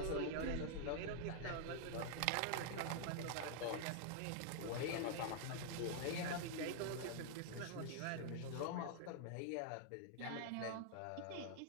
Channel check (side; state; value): both; different; correlation 0.00